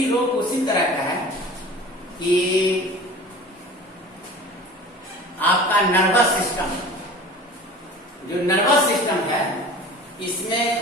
रोग उसी तरह का है कि आपका नर्वस सिस्टम, जो नर्वस सिस्टम है इसमें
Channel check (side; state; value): both; normal; correlation 0.40